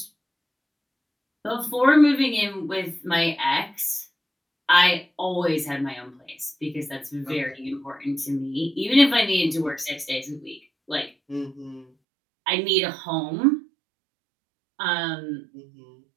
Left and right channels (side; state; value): left; drops out; at 11.9 s